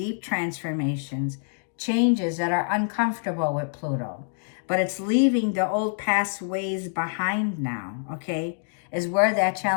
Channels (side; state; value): right; silent; digital silence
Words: transformations, changes that are uncomfortable with Pluto. But it's leaving the old past ways behind now, okay? Is where that